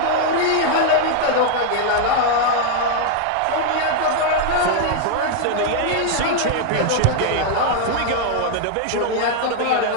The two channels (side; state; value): both; different; correlation 0.00